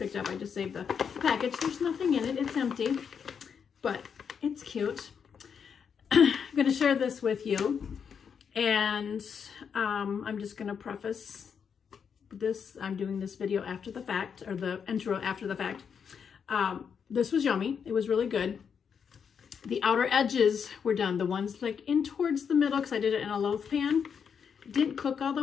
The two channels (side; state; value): right; quieter; 6.9 dB